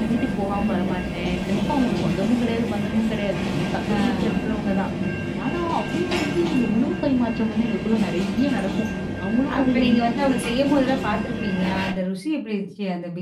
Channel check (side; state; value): both; identical; correlation 1.00